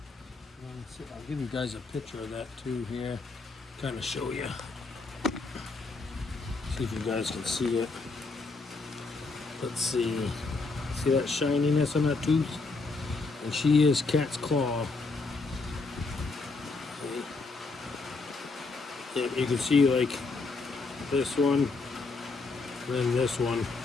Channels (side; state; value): right; quieter; 3.9 dB